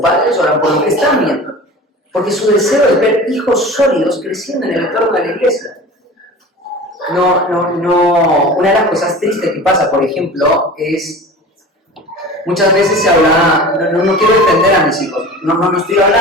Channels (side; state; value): both; normal; correlation 0.37